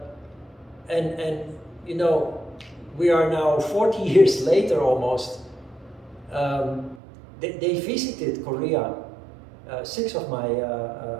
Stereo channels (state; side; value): drops out; left; at 7.0 s